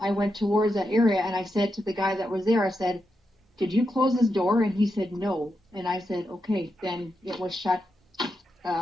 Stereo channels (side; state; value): both; normal; correlation 0.85